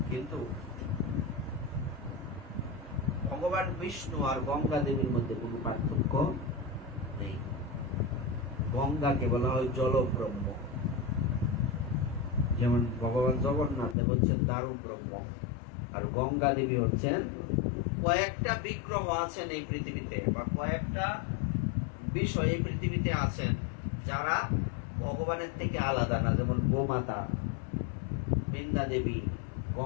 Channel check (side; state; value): right; drops out; at 14.0 s